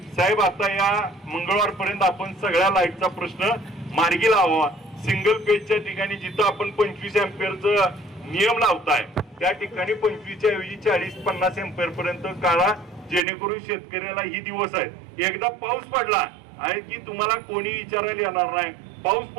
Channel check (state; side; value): drops out; left; at 13.2 s